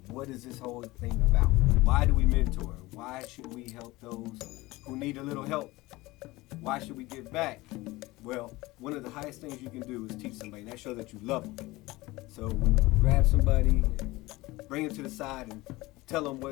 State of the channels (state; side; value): quieter; right; 20.3 dB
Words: What is this whole thing about? Why do we mentor? Why should we help those who need a little help? Why should we give back? Well, one of the highest things you can do is teach somebody. That shows that you love them. So when you grab somebody, bring them to the side and tell them